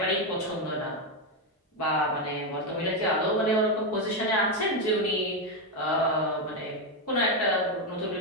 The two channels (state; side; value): normal; both; correlation 0.07